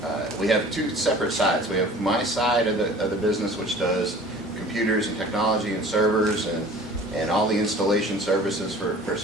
we have two separate sides. We have my side of the business, which does computers and technology and servers and all the installation services for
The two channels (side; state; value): both; normal; correlation 0.46